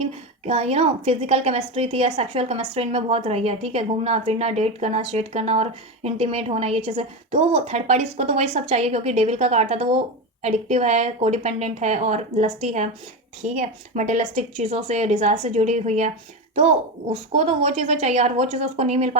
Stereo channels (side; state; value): both; normal; correlation 0.17